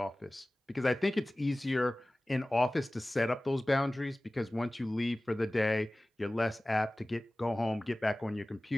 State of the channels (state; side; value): normal; both; correlation 0.98